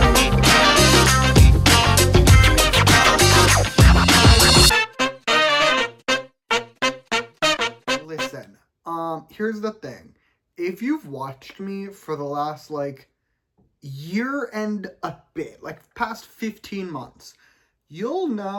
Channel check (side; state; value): both; identical; correlation 1.00